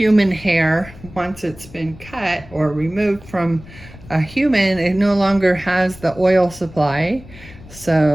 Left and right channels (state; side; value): noise; left; rumble, 19 dB below the sound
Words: hair, once it's been cut or removed from a human, it no longer has the oil supply,